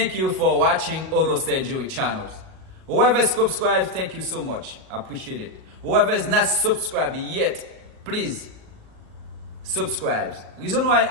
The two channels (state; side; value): late; left; 38 ms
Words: you for watching Auto Surgery channel. Whoever is subscribed, thank you so much. I appreciate it. Whoever is not subscribed yet, please subscribe. Reason why